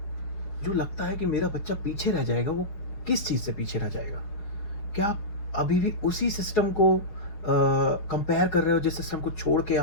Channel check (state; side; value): late; right; 5.0 ms